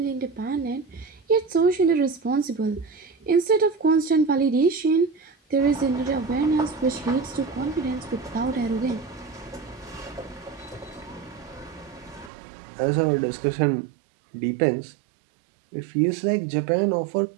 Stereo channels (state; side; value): drops out; left; at 12.3 s